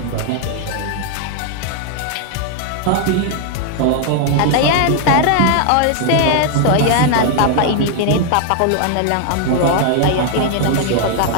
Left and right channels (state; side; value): different; both; correlation 0.00